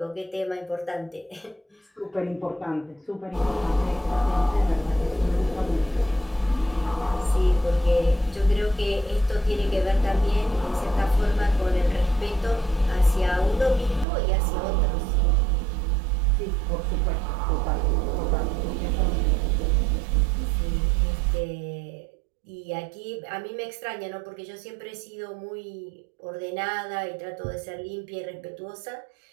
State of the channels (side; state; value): left; drops out; at 14.1 s